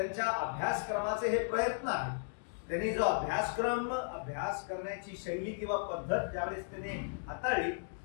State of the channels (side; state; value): right; silent; digital silence